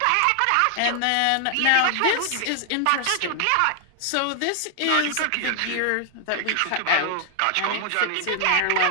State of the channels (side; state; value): both; different; correlation 0.00